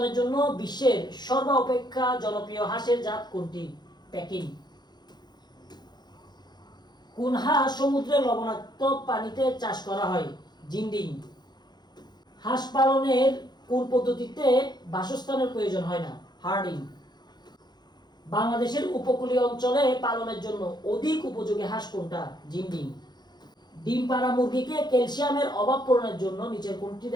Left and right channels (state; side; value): late; right; 0.21 ms